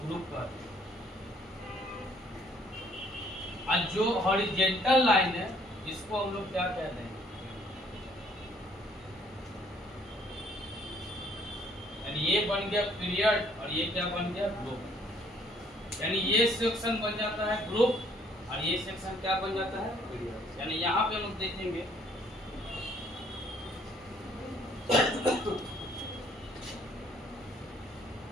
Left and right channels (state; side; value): normal; both; correlation 0.62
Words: ग्रुप कहते हैं। और जो हॉरिजॉन्टल लाइन है इसको हम लोग क्या कहते हैं, यानी ये बन गया पीरियड और ये क्या बन गया, ग्रुप। यानी ये सेक्शन बन जाता है ग्रुप और ये सेक्शन क्या बन जाता है, पीरियड। यानी यहाँ पे हम लोग देखेंगे